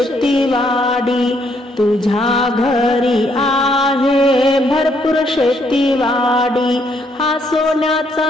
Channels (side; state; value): both; normal; correlation 0.71